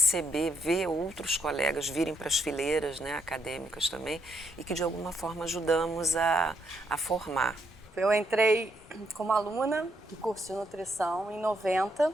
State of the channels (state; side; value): normal; both; correlation 0.75